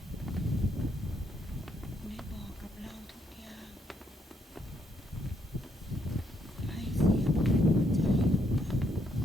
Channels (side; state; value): both; normal; correlation 0.75